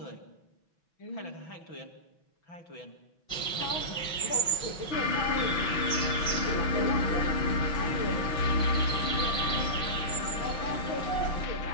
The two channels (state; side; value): late; right; 6.1 ms